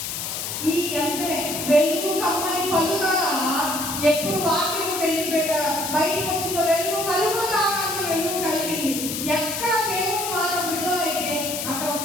ఈ అంటే వెలుగు కమ్మని పలుకగా, ఎప్పుడు వాక్యము బయటకు వచ్చిందో వెలుగు కలుగు కాక వెలుగు కలిగింది. ఎక్కడ దేవుని మాట విడుదలైతే అక్కడ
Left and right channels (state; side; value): noise; left; hiss, 4 dB below the sound